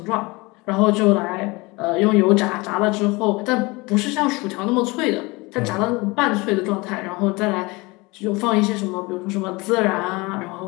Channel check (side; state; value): right; quieter; 24.3 dB